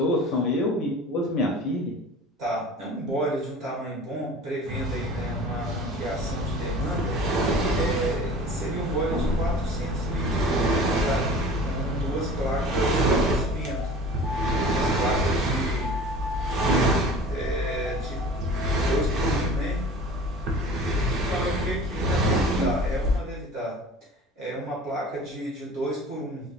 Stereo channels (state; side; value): normal; both; correlation 0.41